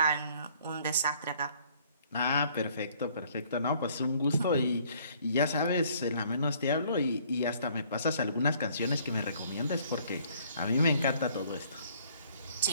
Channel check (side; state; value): both; inverted; correlation -0.61